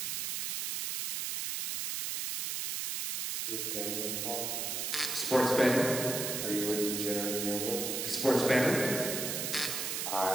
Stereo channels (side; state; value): right; noise; hiss, 2 dB below the sound